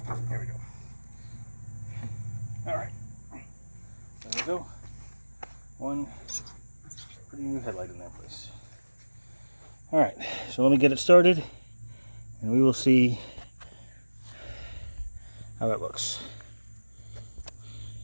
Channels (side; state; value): both; inverted; correlation -1.00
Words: There we go. All right. There we go. One pretty new headlight in that place. All right. So let me get it started, and we will see how it looks.